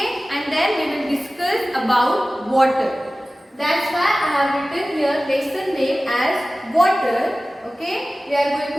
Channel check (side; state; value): both; normal; correlation 0.96